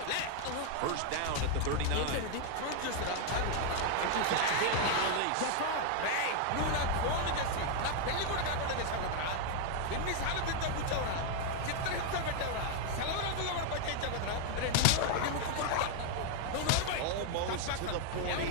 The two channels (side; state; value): both; different; correlation 0.00